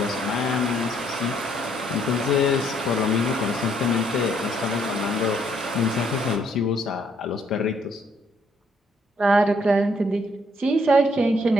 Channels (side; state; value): both; normal; correlation 0.68